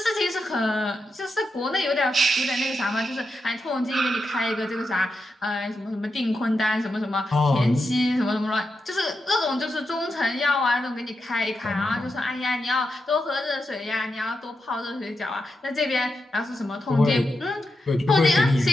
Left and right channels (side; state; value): both; normal; correlation 0.87